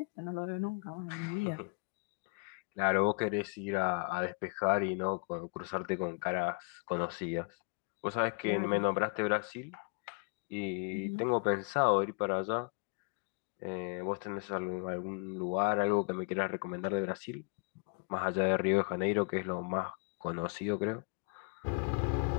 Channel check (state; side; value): quieter; right; 34.8 dB